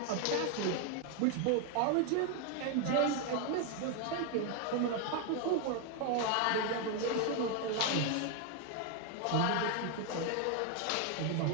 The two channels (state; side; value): different; both; correlation 0.01